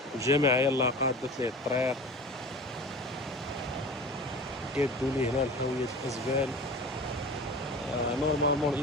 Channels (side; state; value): both; normal; correlation 0.36